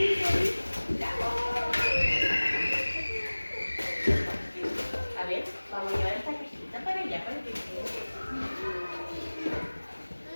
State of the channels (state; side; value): inverted; both; correlation -1.00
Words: A ver, vamos a llevar esta cajita para allá, para que quede.